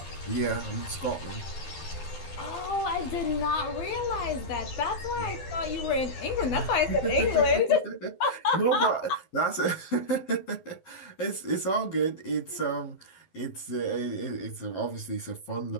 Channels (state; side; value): late; right; 12 ms